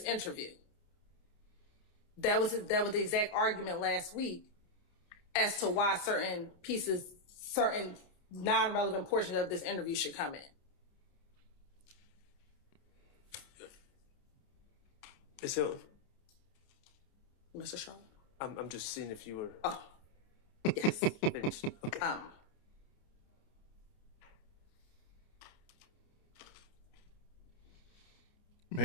interview. That was the exact argument last week as to why certain non-relevant portions of this interview should come in. Ms. Hilton? Mr. Shaw? I'm just seeing if you were Yes. finished. Okay.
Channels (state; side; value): late; right; 29 ms